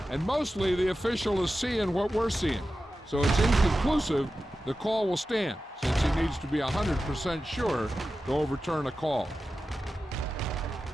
And mostly the official is seeing what we're seeing. So it's inconclusive. The call will stand, since he needs to be 100% sure to overturn a call.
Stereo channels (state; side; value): normal; both; correlation 0.93